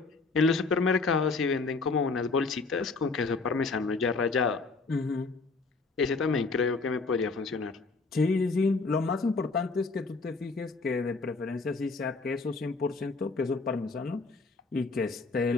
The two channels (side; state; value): right; quieter; 4.0 dB